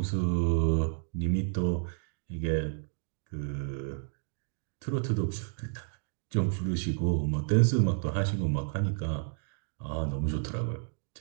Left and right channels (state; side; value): silent; left; 57 dB below the other